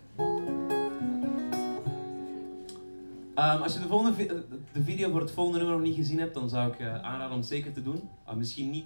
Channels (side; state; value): both; inverted; correlation -1.00